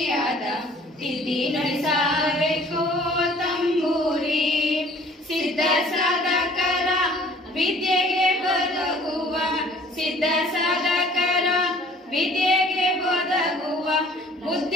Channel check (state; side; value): normal; both; correlation 0.53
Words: ತಿದ್ದಿ ನುಡಿಸಬೇಕೋ ತಂಬೂರಿ. ಸಿದ್ಧ ಸಾಧಕರ ವಿದ್ಯೆಗೆ ಬದಗುವ, ಸಿದ್ಧ ಸಾಧಕರ ವಿದ್ಯೆಗೆ ಬದಗುವ